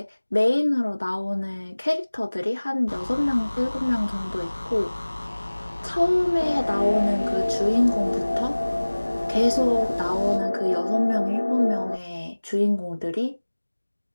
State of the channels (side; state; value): both; inverted; correlation -1.00